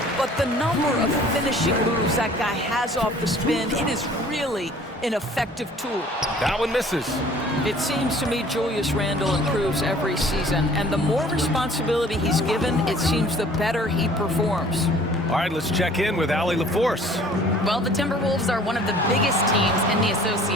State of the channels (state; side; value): normal; both; correlation 0.52